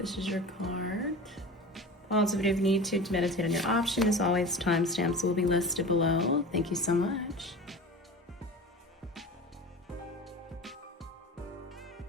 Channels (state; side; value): normal; both; correlation 0.34